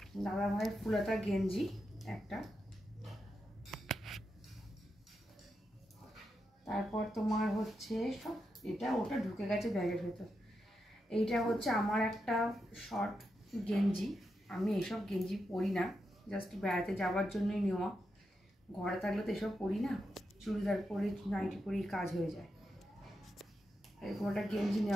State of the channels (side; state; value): both; normal; correlation 0.86